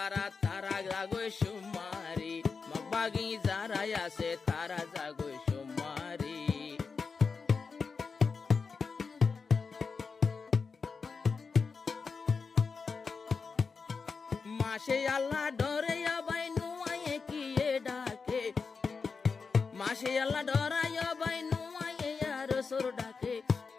তারা জাগোয় সুমারি মগবাগি যারা আছে তারা জাগোয় সুমারি মাসে আল্লাহ ডরে ভাই নুয়ায়ে কিয়ে ডাকে মাসে আল্লাহ ডরায় ভাই নুয়ায়ে আর সুর ডাকে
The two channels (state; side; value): quieter; right; 5.0 dB